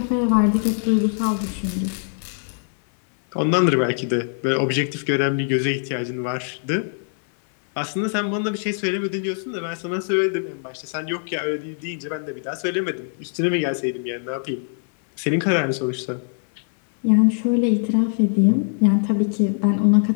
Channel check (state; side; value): silent; right; 58 dB below the other